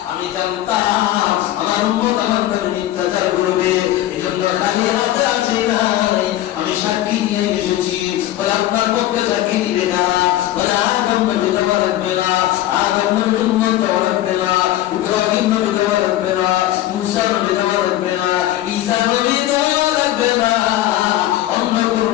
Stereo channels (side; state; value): right; quieter; 14.1 dB